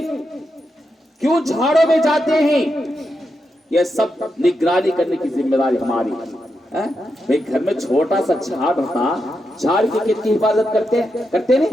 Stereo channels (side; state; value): both; normal; correlation 0.85